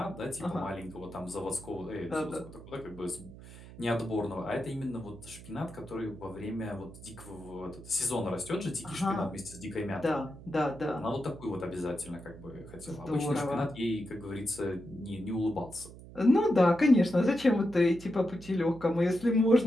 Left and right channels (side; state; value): right; noise; hum, 16 dB below the sound